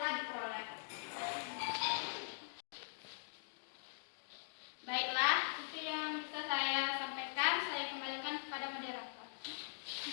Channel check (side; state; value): right; silent; digital silence